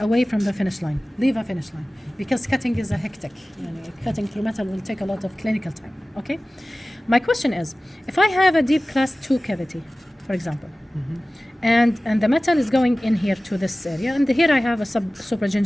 from the finish line. Leave a finish line. Because cutting is a hectic. Cutting through metal will take a lot of clinical time, okay? My question is, if I have a deep class 2 cavity, for example, and the metal is going in here to this area, and here I have a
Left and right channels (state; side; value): normal; both; correlation 0.97